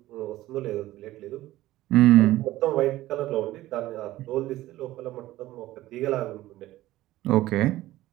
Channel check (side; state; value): left; quieter; 16.0 dB